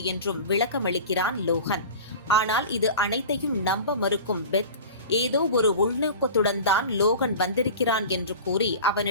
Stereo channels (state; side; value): inverted; both; correlation -0.36